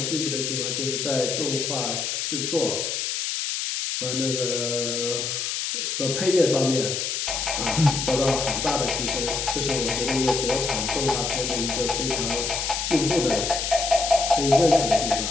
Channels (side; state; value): left; noise; hiss, 2 dB below the sound